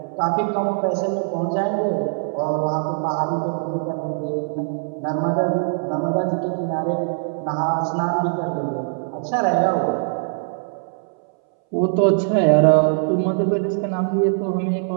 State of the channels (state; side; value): silent; left; 62 dB below the other